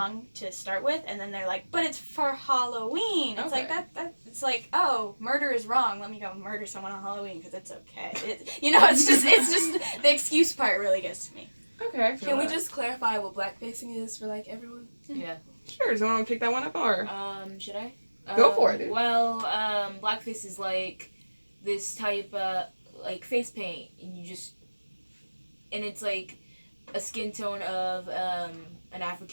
to start with, and then they're like, but it's for Halloween. It's like that. It's like, oh, murder is wrong. Let me go murder someone on Halloween because it's okay. It's just the excuse part really gets to me. Okay. Can we just clarify what blackfacing is for like everyone? Yeah. Sure, does anyone want to pick that one up, or? Should I? Go for it, dude. Well, blackface is like this type of like face paint, and it's like a skin tone of an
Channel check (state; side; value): inverted; both; correlation -1.00